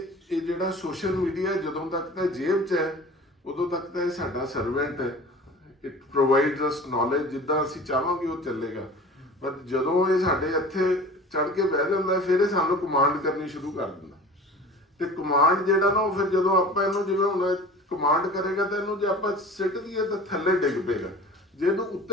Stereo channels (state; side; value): normal; both; correlation 0.40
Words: ਇਹ ਜਿਹੜਾ ਸੋਸ਼ਲ ਮੀਡੀਆ ਜਦੋਂ ਤੱਕ ਤਾਂ ਜੇਬ 'ਚ ਹੈ ਉਦੋਂ ਤੱਕ ਤਾਂ ਇਹ ਸਾਡਾ ਸਰਵੈਂਟ ਹੈ। ਇਟ ਪ੍ਰੋਵਾਈਡਸ ਅਸ ਨੌਲੇਜ, ਜਿੱਦਾਂ ਅਸੀਂ ਚਾਹਾਂਗੇ ਉਹ ਚੱਲੇਗਾ। ਪਰ ਜਦੋਂ ਇਹ ਸਾਡੇ ਇੱਥੇ ਚੜ ਕੇ ਬਹਿ ਜਾਂਦਾ ਫਿਰ ਇਹ ਸਾਨੂੰ ਕਮਾਂਡ ਕਰਨੀ ਸ਼ੁਰੂ ਕਰ ਦਿੰਦਾ, ਤੇ ਕਮਾਂਡ ਜਿਹੜਾ ਨਾ ਉਹ ਫਿਰ ਜਦੋਂ ਆਪਾਂ ਇਹਨੂੰ ਜਿਵੇਂ ਹੁਣ ਕਮਾਂਡ ਕਰੇਗਾ ਤਾਂ ਇਹਨੂੰ ਜੇ ਆਪਾਂ ਸਿੱਟ ਦਈਏ ਤਾਂ ਥੱਲੇ ਡਿੱਗ ਪਏਗਾ। ਜੇ ਇਹਨੂੰ